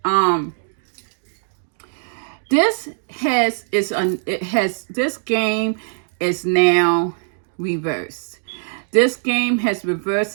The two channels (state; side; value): silent; left; digital silence